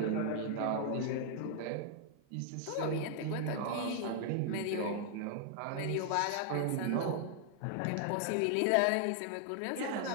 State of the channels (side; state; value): both; different; correlation 0.00